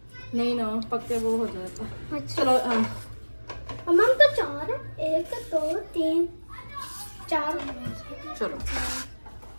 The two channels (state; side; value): inverted; both; correlation -1.00